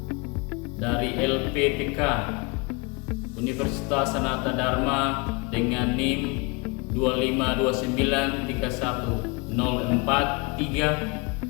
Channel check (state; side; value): quieter; right; 29.5 dB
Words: dari LPPK Universitas Sanata Dharma dengan NIM